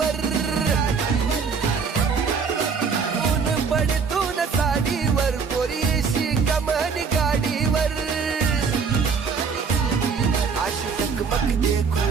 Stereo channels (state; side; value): quieter; left; 5.6 dB